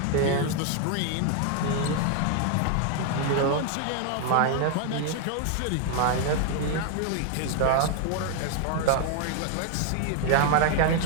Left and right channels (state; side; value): different; both; correlation 0.00